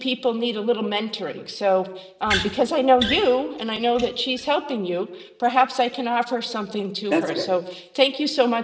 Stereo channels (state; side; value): identical; both; correlation 1.00